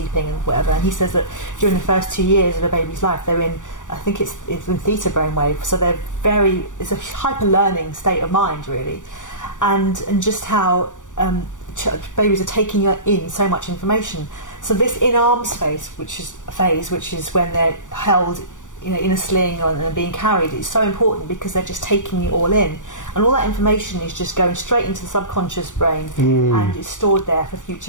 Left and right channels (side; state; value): right; late; 0.87 ms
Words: and whatever. And he says that during the first 2 years of a baby's life, they're in, I think it's in theta brainwave, so it's a hyper learning state of mind, really, and just how babies are taking in so much information. So this in-arms phase, which is when they're held, in a sling and being carried, is so important because they're just taking it all in, and all that information is just going straight into the subconscious brain and is stored there for